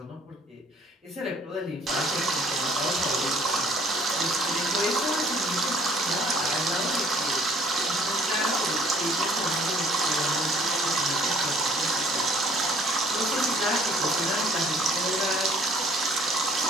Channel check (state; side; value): normal; both; correlation 0.57